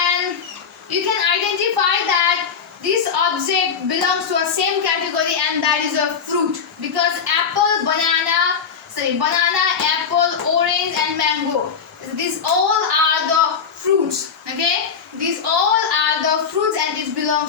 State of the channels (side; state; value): right; quieter; 6.4 dB